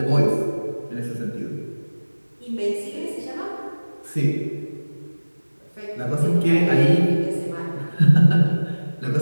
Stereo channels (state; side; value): inverted; both; correlation -1.00